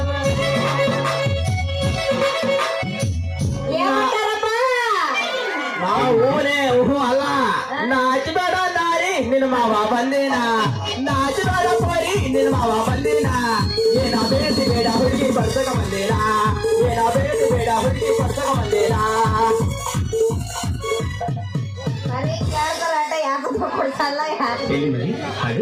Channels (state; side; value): identical; both; correlation 1.00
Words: ಮಾವ ಅಲ್ಲ ನಾಚಬೇಡ ನಾರಿ ನಿನ್ನ ಮಾವ ಬಂದಿನ ನಾಚಬೇಡ ಪರಿ ನಿನ್ನ ಮಾವ ಬಂದಿನ ಏನ ಬೇಟಿ ಬೇಡ ಹುಡುಗಿ ಪಡ್ಸಕ ಬಂದಿನ ಏನ ಬೇಟಿ ಬೇಡ ಹುಡುಗಿ ಪಡ್ಸಕ ಬಂದಿನ ಮನೆ ಕೇಳ್ತಾರ ಆಟ ಯಾಕೆ ಕೊಡ್ಸಲ್ಲ ಯಾಕೆ